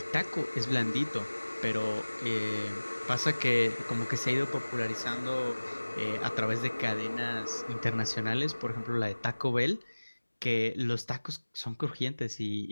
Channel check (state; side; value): inverted; both; correlation -1.00